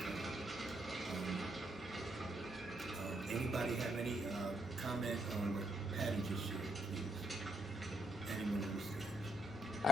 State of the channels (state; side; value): noise; left; rumble, 29 dB below the sound